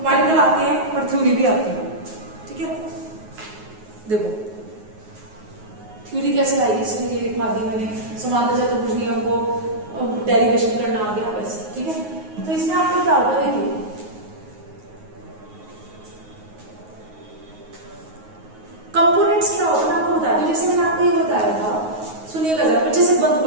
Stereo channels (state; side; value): late; left; 9.4 ms